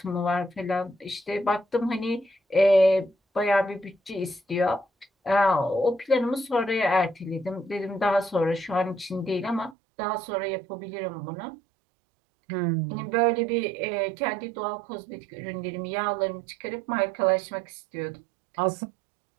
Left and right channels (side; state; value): left; drops out; at 9.8 s